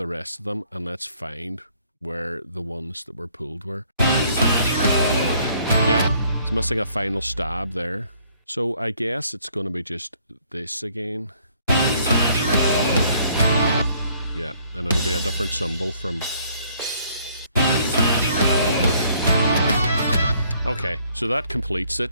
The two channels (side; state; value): both; inverted; correlation -0.63